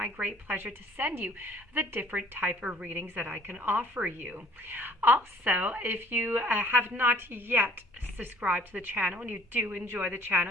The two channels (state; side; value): normal; both; correlation 0.55